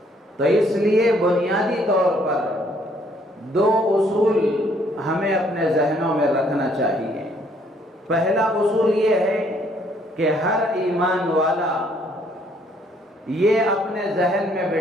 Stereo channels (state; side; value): normal; both; correlation 0.65